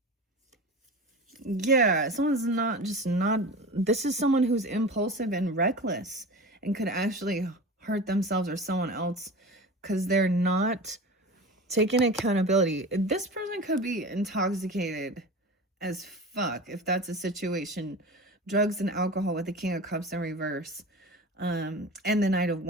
Yeah, someone's this is someone who's impulsive and reckless and could actually hurt themselves or someone else because they're not taking accountability. This person could be intoxicated as fuck if that's a situation. Drugs and alcohol with the King of Cups in reverse, and the Knight of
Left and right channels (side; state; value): both; normal; correlation 0.32